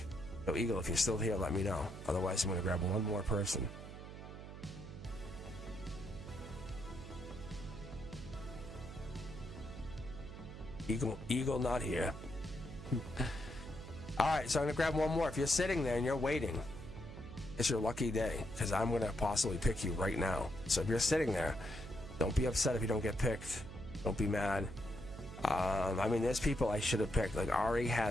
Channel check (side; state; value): right; noise; hum, 12 dB below the sound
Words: So Eagle, if you're still here, let me know. Otherwise, I'm going to grab one more person. Eagle not here. All right, so I'm gonna grab one more. If you're sitting there and you're waiting, it's your lucky day, because I'm gonna possibly pick you right now. So if you're sitting there, don't be upset if you don't get picked. Don't be mad. I mean, there's people I should have picked. Like Ari